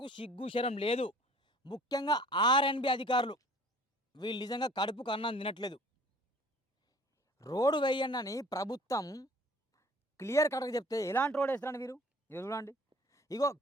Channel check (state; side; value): normal; both; correlation 0.51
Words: సిగ్గు, శరం లేదు. ముఖ్యంగా ఆర్ఎండ్బి అధికారులు వీళ్ళు నిజంగా కడుపుకు అన్నం తినట్లేదు. రోడ్డు వేయండని ప్రభుత్వం క్లియర్ కట్‌గా చెప్తే ఎలాంటి రోడ్ ఏస్తారండి మీరు? ఇగో చూడండి. ఇగో